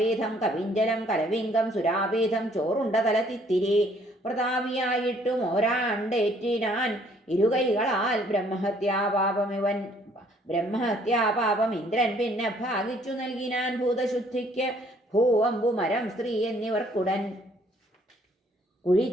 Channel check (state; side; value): normal; both; correlation 0.62